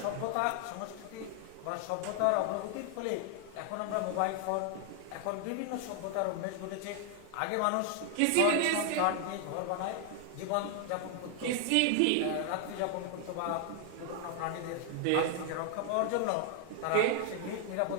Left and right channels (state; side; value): different; both; correlation 0.00